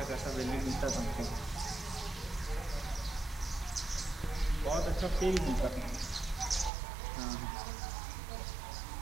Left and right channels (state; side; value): drops out; left; at 6.7 s